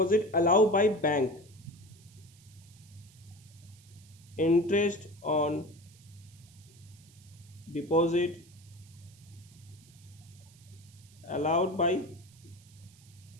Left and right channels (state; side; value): noise; right; hiss, 25 dB below the sound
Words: allow by bank. Interest on deposit allowed by